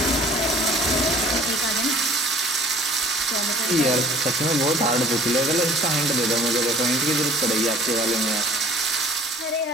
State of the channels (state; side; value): normal; both; correlation 0.50